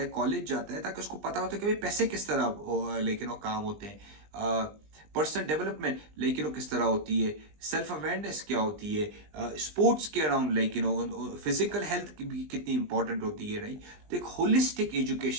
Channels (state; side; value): late; left; 20 ms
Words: है, कॉलेज जाता है, ताकि उसको पता होता है कि भाई पैसे किस तरह लेकिन वो काम होते हैं, पर्सनल डेवलपमेंट लेकिन वो किस तरह होती है, सेल्फ अवेयरनेस क्या होती है, स्पोर्ट्स के अराउंड लेकिन फिजिकल हेल्थ की भी कितनी इंपॉर्टेंट होती है, राइट? तो एक होलिस्टिक